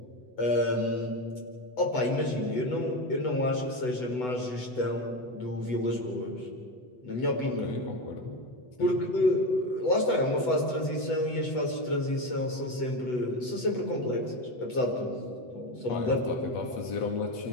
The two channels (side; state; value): right; late; 8.1 ms